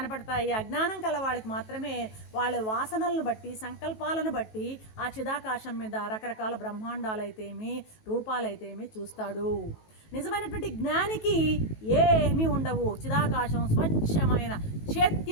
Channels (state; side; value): late; right; 18 ms